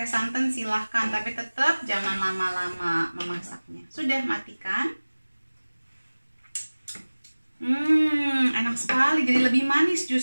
santan silahkan, tapi tetap jangan lama-lama memasaknya. Sudah, matikan. Enak sekali, jadi lebih manis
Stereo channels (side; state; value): both; inverted; correlation -1.00